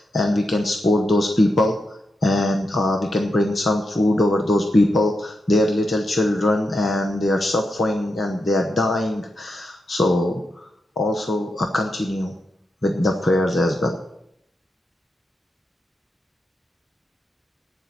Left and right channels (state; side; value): normal; both; correlation 0.86